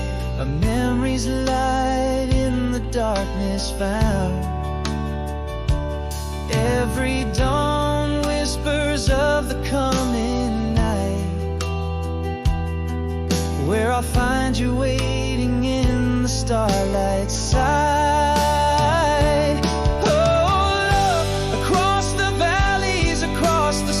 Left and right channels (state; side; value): identical; both; correlation 1.00